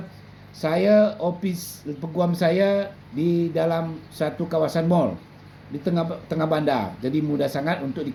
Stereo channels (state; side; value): identical; both; correlation 1.00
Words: Saya ofis peguam saya di dalam satu kawasan mall di tengah bandar. Jadi mudah sangat untuk